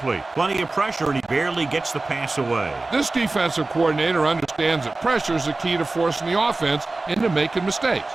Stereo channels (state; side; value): quieter; left; 3.3 dB